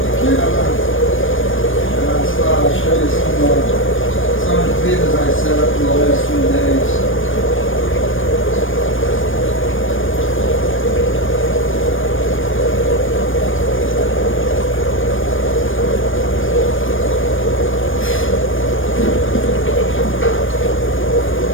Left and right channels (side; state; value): right; late; 0.58 ms